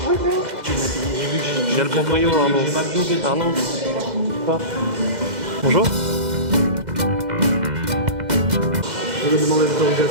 Bonjour. J'ai le proprio Arnaud. Bonjour. Je vais demander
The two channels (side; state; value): left; late; 2.0 ms